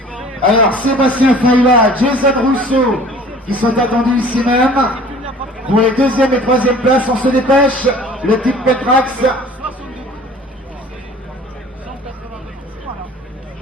Alors Sébastien Failla, Jason Rousseau, qui sont attendus ici même. Pour les deuxième et troisième places, on se dépêche. Le type Petrax.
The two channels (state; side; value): normal; both; correlation 0.47